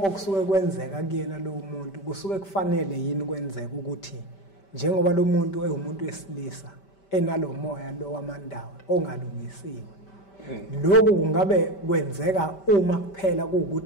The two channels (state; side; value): late; right; 5.1 ms